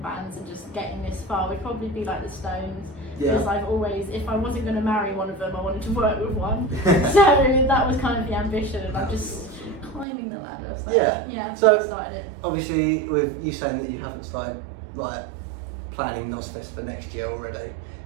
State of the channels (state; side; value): drops out; left; at 10.1 s